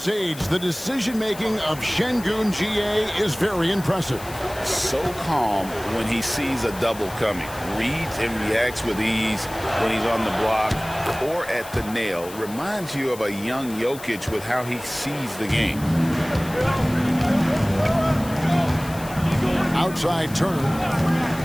age. The decision-making of Şengün GA is very impressive. So calm when he sees a double coming. Reads and reacts with ease when he's on the block or at the nail. Reminds you of a young Jokic with how he sees the game. Outside Turner.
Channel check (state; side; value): noise; left; hiss, 16 dB below the sound